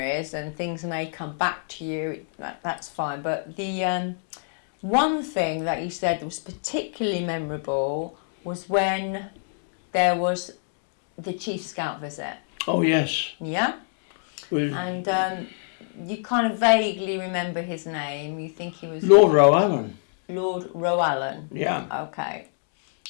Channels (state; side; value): silent; right; digital silence